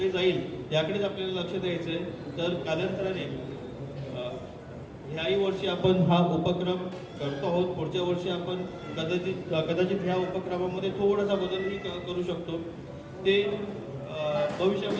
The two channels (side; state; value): both; identical; correlation 1.00